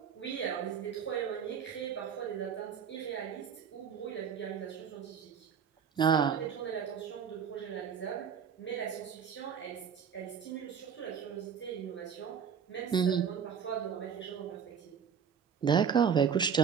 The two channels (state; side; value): quieter; left; 7.2 dB